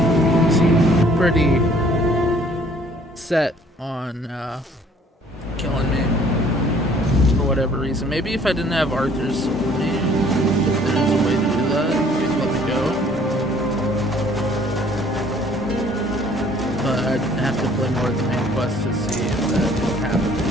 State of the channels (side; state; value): both; normal; correlation 0.57